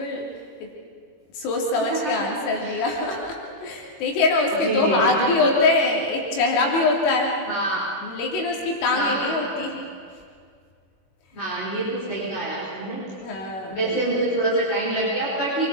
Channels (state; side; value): late; right; 21 ms